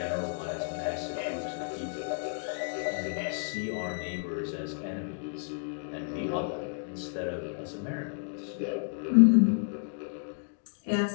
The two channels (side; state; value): right; silent; 57 dB below the other